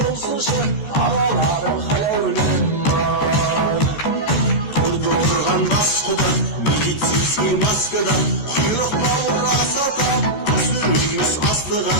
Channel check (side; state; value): right; late; 14 ms